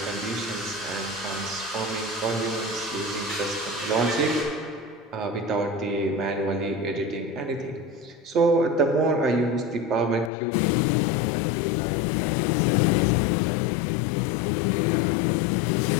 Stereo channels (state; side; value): drops out; right; at 10.3 s